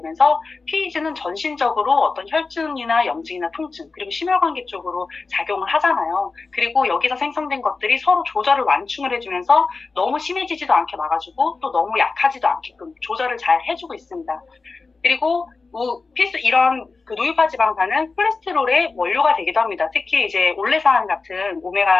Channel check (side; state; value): right; quieter; 4.1 dB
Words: PEG는 전신적으로 어떤 혈증이나 염증이나 통증 그리고 심혈관계 쪽으로 작용을 하잖아요. 그리고 여기서 생성된 것들이 서로 조절을 완충을 해주면서 너무 심해지지도 않게 막아주고 또 너무 약하지도 않게끔 조절을 잘 해주고 있습니다. 그리고 이런 노유파 지방산은 콜레스테롤의 원료가 되기도 합니다. 특히 이제 올레산 같은